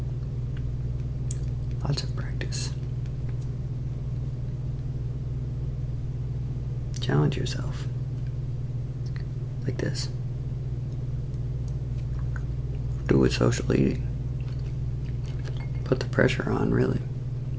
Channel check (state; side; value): identical; both; correlation 1.00